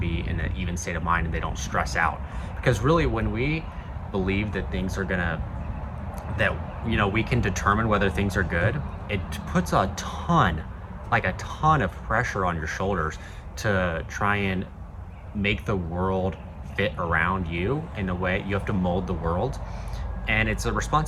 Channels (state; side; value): identical; both; correlation 1.00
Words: in an even state of mind, and they don't stress out. Because really, when we believe that things are gonna, that we can determine whether things are good, it puts a ton of pressure on your shoulders to try and make the world fit around you in a way. You have to mold the world, and it's a